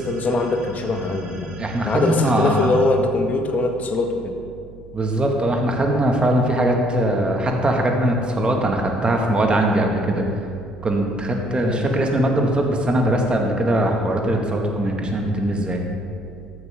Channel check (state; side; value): noise; right; hum, 20 dB below the sound